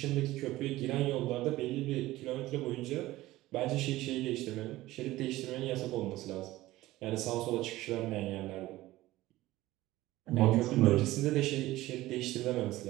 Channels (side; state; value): left; quieter; 17.1 dB